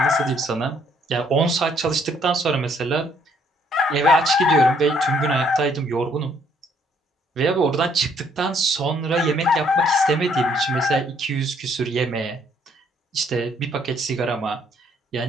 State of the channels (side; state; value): both; normal; correlation 0.66